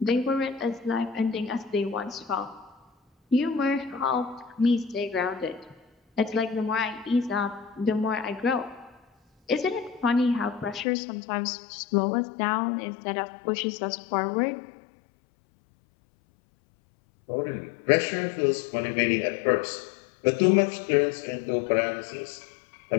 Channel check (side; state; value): right; drops out; at 10.9 s